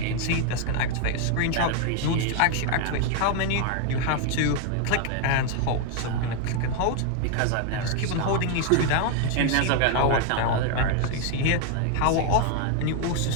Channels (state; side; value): different; both; correlation 0.00